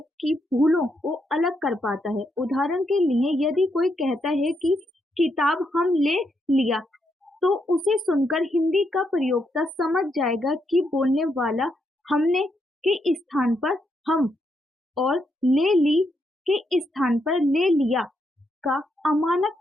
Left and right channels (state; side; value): normal; both; correlation 0.79